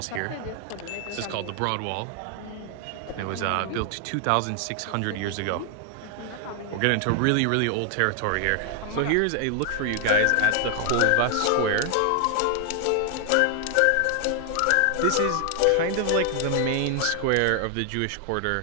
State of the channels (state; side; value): different; both; correlation 0.00